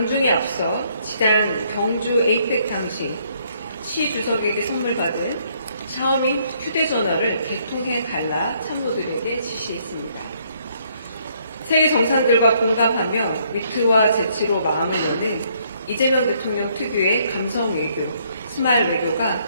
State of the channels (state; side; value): inverted; both; correlation -0.68